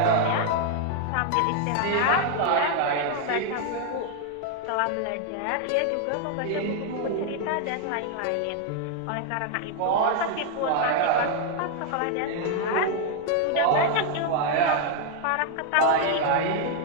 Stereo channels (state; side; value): different; both; correlation 0.00